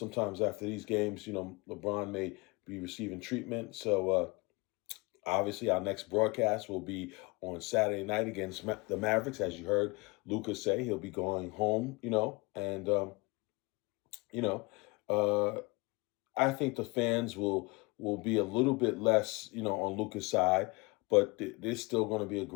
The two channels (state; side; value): quieter; right; 26.4 dB